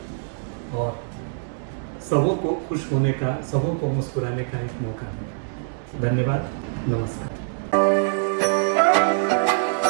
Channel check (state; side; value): silent; left; 63 dB below the other